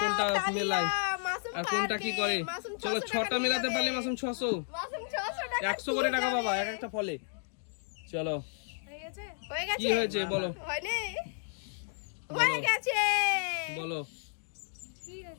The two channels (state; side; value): silent; right; digital silence